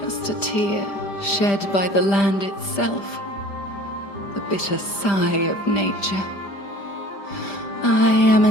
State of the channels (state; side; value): late; right; 5.0 ms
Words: a tear shed by the land itself. The bitter sigh of nature. I am